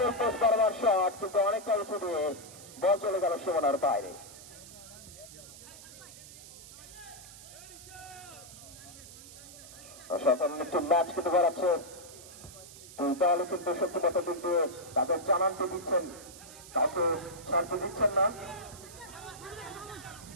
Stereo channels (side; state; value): right; noise; hiss, 16 dB below the sound